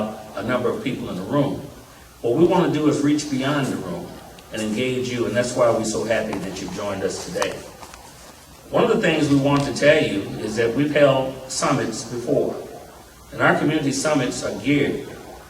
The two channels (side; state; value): both; identical; correlation 1.00